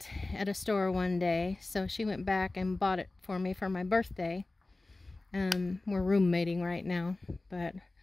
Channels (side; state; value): right; quieter; 3.0 dB